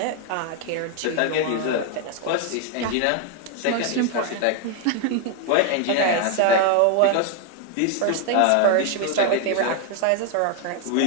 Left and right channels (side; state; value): both; different; correlation 0.01